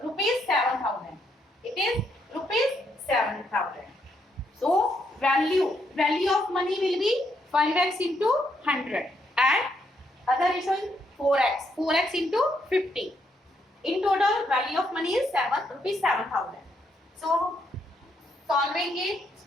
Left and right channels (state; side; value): normal; both; correlation 0.75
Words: rupees 7,000. It is rupees 7,000. So value of money will be 5x into 100 and other ratio is 4x into 50. In total value of money is rupees 7,000. So solving it,